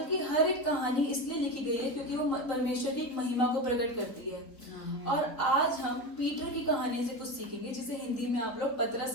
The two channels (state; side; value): late; right; 4.3 ms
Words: की हर एक कहानी इसलिए लिखी गई है क्योंकि वो परमेश्वर की एक महिमा को प्रकट करती है। और आज हम पीटर की कहानी से कुछ सीखेंगे, जिसे हिंदी में आप लोग